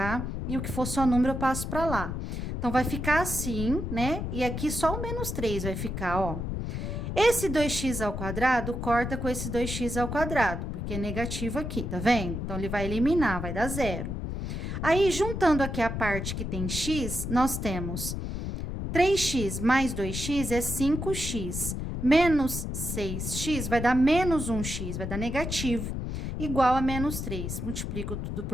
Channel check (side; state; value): left; noise; rumble, 4 dB below the sound